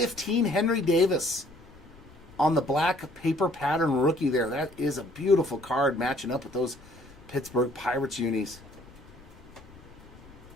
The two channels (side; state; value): left; noise; rumble, 22 dB below the sound